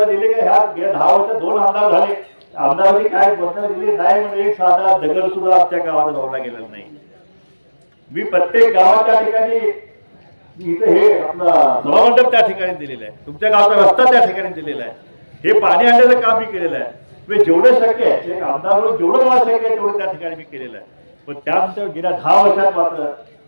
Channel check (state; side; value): inverted; both; correlation -1.00